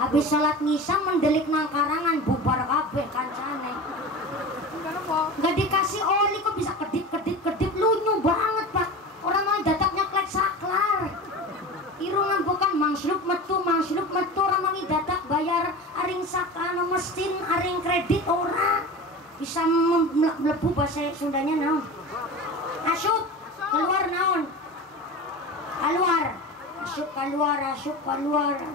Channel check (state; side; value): normal; both; correlation 0.31